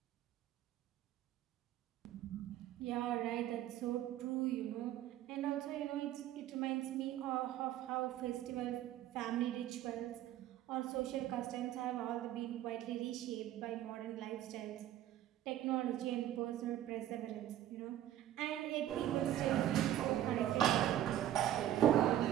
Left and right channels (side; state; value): left; quieter; 12.5 dB